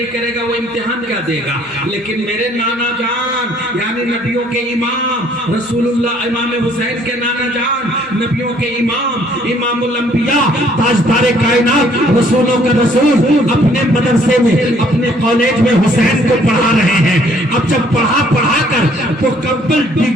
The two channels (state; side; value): normal; both; correlation 0.62